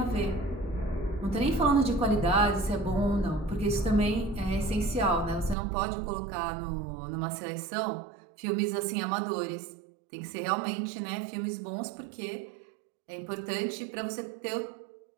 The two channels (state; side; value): drops out; left; at 5.6 s